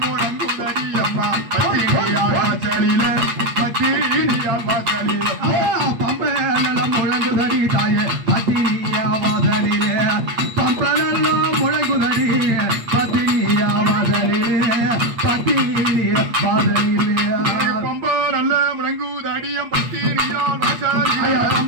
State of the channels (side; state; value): left; late; 8.5 ms